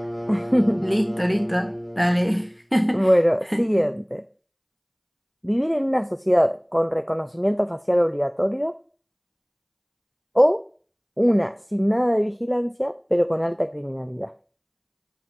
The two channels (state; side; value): identical; both; correlation 1.00